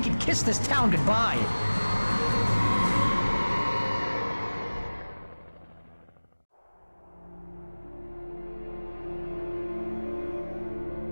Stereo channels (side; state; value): both; inverted; correlation -1.00